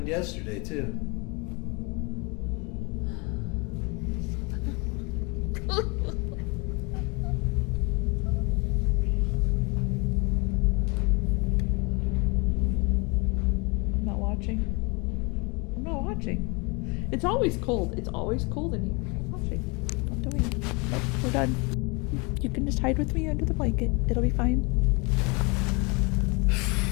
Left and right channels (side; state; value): right; quieter; 29.6 dB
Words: yesterday, too? I'm not watching. I'm not watching. It's always cold. It's always cold in here. I'm not watching. I'm doing it. Nope, we're done. You can just hide with me under the blanket. It'll be fine.